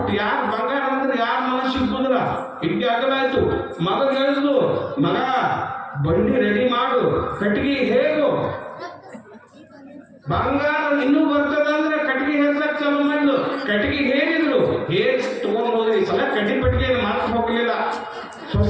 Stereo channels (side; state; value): both; identical; correlation 1.00